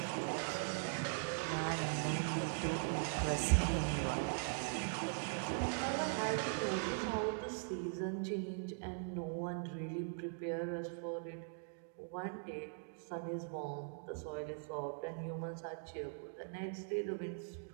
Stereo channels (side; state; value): left; silent; digital silence